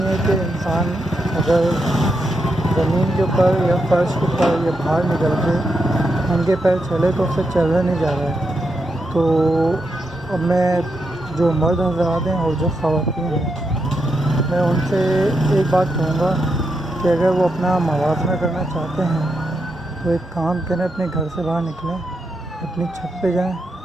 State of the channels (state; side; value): normal; both; correlation 0.83